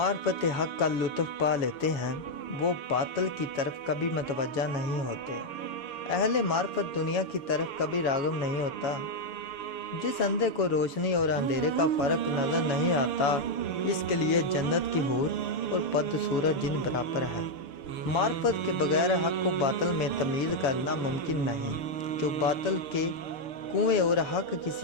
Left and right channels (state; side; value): late; right; 6.8 ms